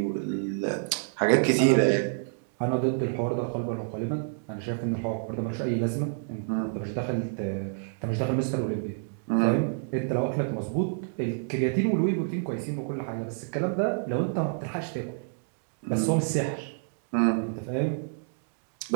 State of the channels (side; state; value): left; silent; digital silence